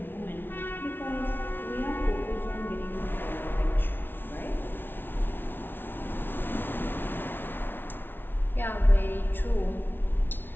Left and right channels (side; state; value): right; late; 0.10 ms